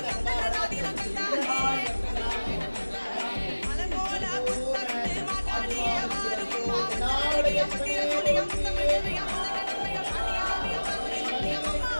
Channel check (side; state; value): both; inverted; correlation -1.00